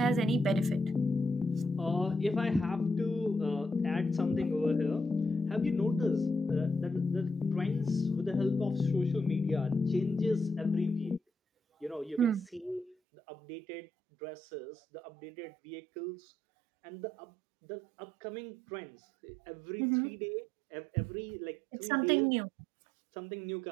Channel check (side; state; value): left; drops out; at 13.0 s